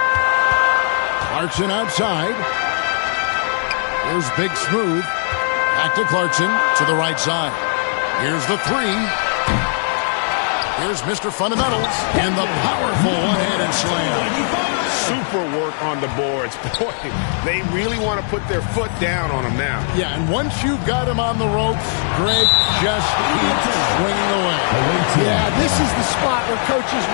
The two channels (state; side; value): silent; right; 67 dB below the other